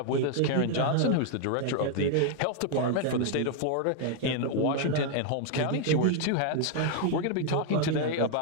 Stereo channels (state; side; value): different; both; correlation 0.00